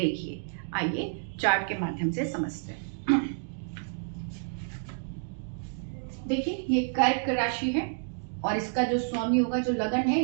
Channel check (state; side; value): silent; left; digital silence